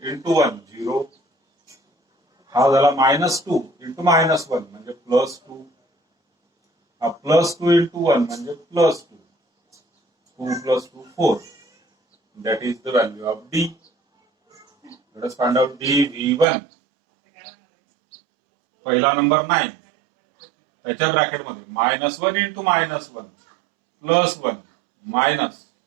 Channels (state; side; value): drops out; left; at 16.4 s